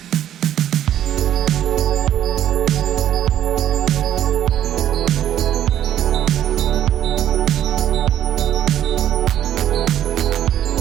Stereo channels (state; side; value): quieter; left; 11.1 dB